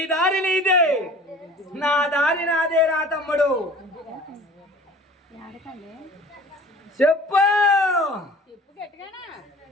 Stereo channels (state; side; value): normal; both; correlation 0.45